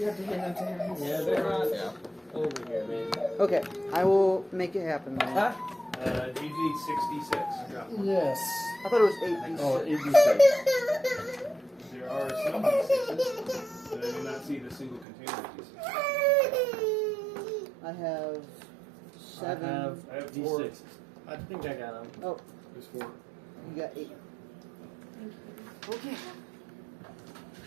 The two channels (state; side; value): drops out; left; at 15.1 s